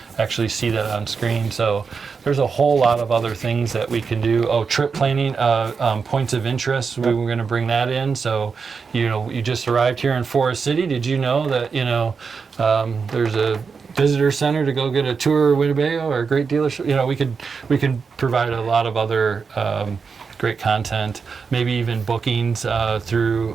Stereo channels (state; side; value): quieter; left; 5.4 dB